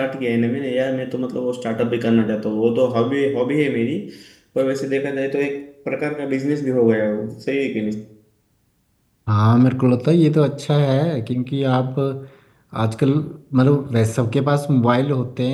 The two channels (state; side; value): identical; both; correlation 1.00